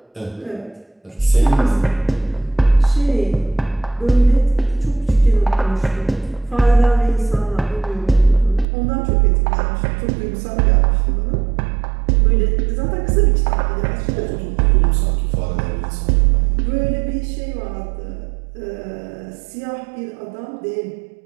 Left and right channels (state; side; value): drops out; left; at 8.7 s